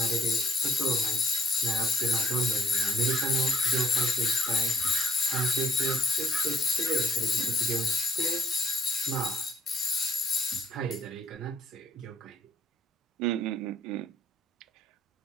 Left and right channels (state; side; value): normal; both; correlation 0.59